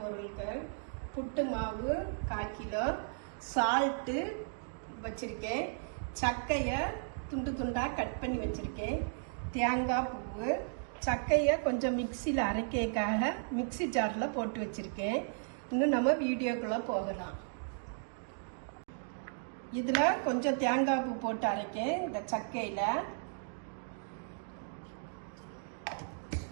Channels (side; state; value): left; silent; digital silence